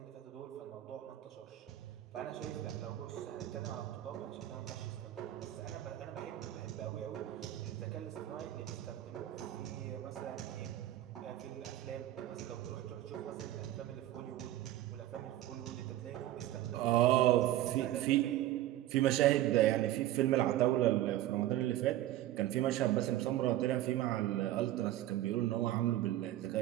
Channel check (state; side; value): quieter; left; 14.1 dB